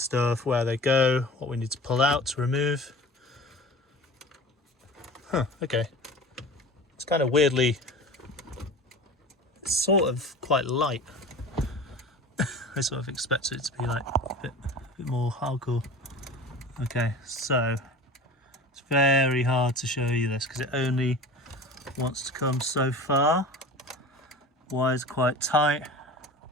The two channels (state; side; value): normal; both; correlation 0.37